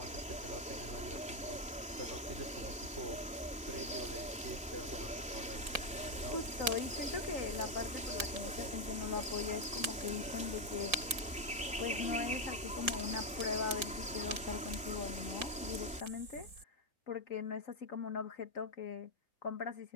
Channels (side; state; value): both; normal; correlation 0.04